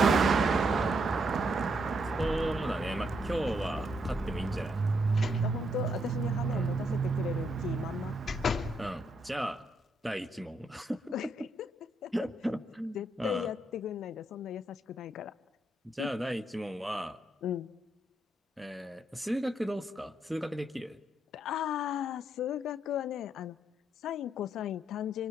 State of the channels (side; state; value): both; normal; correlation 0.77